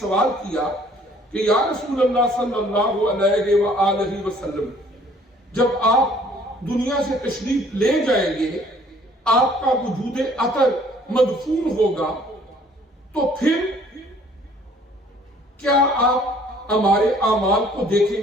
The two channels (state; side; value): normal; both; correlation 0.58